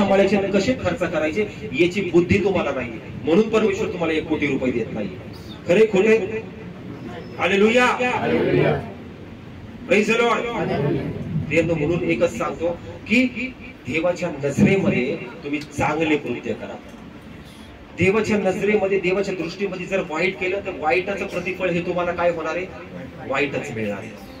आणि कसे खर्च करायचे याची बुद्धी तुम्हाला नाही, म्हणून परमेश्वर तुम्हाला 1 कोटी रुपये देत नाही. खरे खोटे? हालेलुया. Praise the Lord. म्हणून एकच सांगतो की देवाच्या नजरेमध्ये तुम्ही चांगले कृत्य करा. देवाच्या नजरेमध्ये, देवाच्या दृष्टीमध्ये जर वाईट केलं तर वाईटाचं प्रतिफळ हे तुम्हाला काय होणार आहे? वाईटच मिळणार आहे.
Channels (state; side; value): identical; both; correlation 1.00